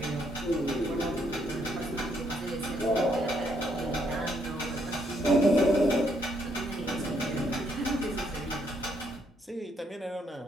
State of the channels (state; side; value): normal; both; correlation 0.72